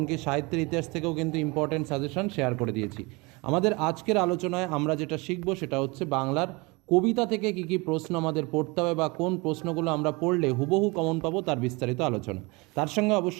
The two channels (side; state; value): left; quieter; 26.3 dB